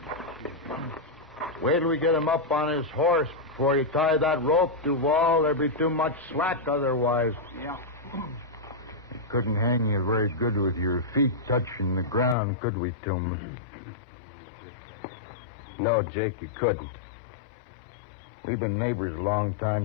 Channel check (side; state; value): right; drops out; at 12.4 s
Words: Wait till we get him up on his horse before you tie that rope, Duval. There'd be too much slack otherwise. Yeah. We couldn't hang you very good with your feet touching the ground, could we, Tillman? No, Jake, you couldn't. We've been neighbors a long